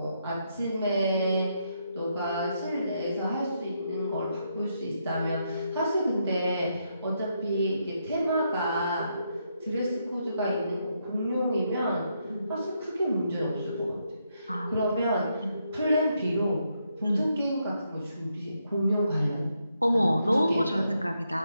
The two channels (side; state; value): both; inverted; correlation -0.79